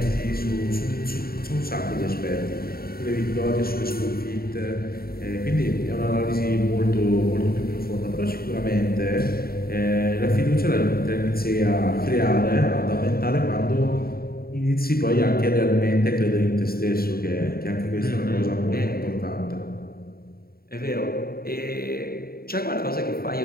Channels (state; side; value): late; right; 0.44 ms